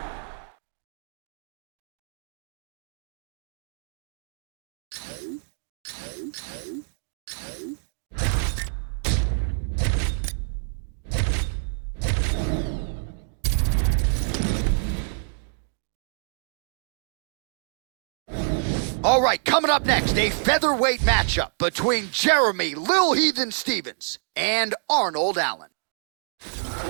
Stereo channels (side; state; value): left; silent; digital silence